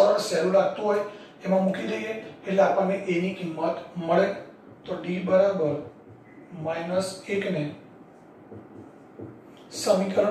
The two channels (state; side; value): identical; both; correlation 1.00